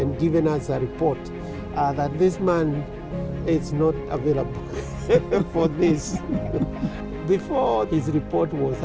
given us a report that this man is not available for this. Before his report was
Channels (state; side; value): identical; both; correlation 1.00